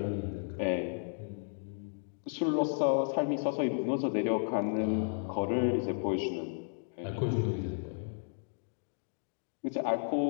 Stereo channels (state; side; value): silent; right; digital silence